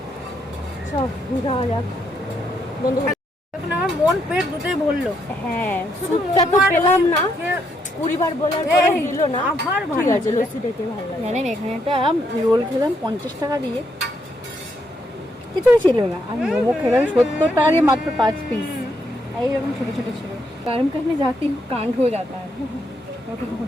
সব যাওয়া যাক বন্ধু। এখন আমার মন পেট দুটোই ভরলো। হ্যাঁ, স্যুপটা তো পেলাম না, 20 বার বলার পরে দিল না। আবার ঠিক আছে, লস্যিটাকে ভালো লাগে। জানেন এখানে একটা রোল খেলাম 50 টাকা দিয়ে, কিছুই ছিল না। আর মোমো খেলাম 70 টাকা দিয়ে মাত্র 5 পিস। এইরকম ছোট ছোট ছিল। গরম करने जाती हूँ कांड हो जाता है।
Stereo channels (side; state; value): both; normal; correlation 0.76